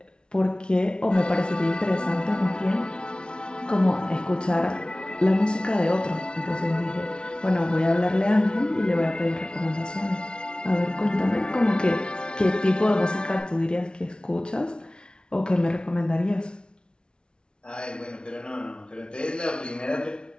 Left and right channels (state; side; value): late; right; 0.055 ms